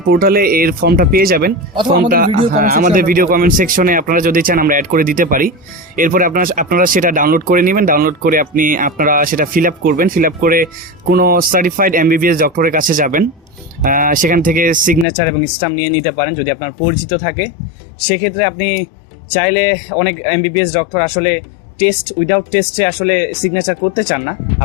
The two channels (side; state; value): right; drops out; at 15.1 s